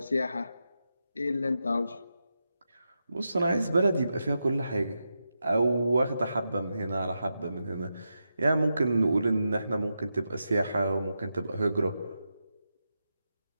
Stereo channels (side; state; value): both; inverted; correlation -0.88